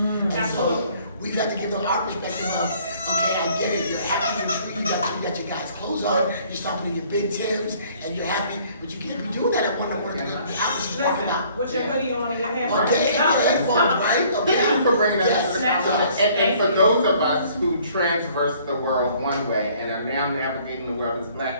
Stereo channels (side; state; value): both; inverted; correlation -0.58